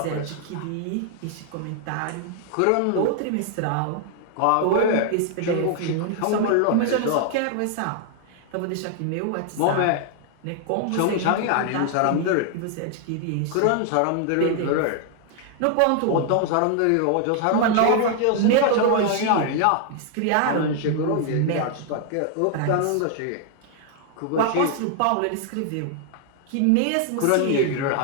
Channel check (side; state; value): both; different; correlation 0.00